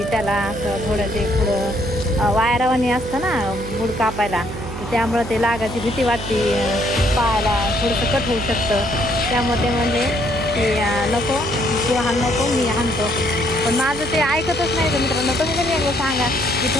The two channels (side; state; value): right; noise; hum, 9 dB below the sound